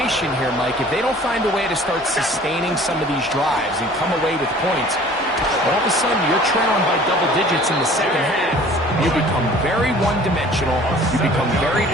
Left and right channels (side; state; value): both; normal; correlation 0.49